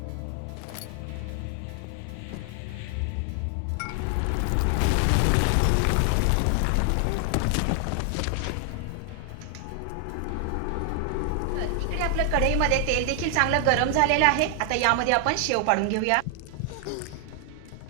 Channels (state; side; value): different; both; correlation 0.00